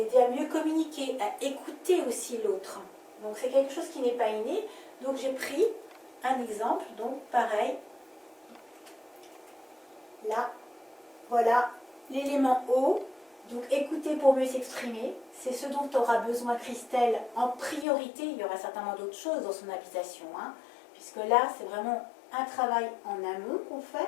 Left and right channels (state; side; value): drops out; right; at 17.9 s